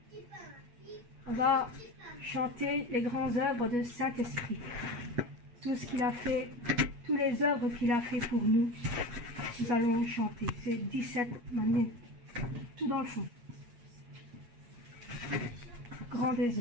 On va chanter les grandes œuvres de Saint-Esprit. Tout ce qu'il a fait, toutes les œuvres qu'il a fait pour nous, nous allons chanter. C'est 17 manières, tout dans le fond. grand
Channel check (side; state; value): left; late; 8.3 ms